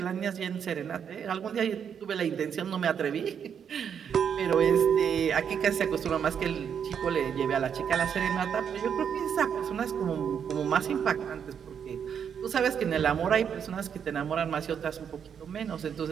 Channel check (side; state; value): left; quieter; 7.7 dB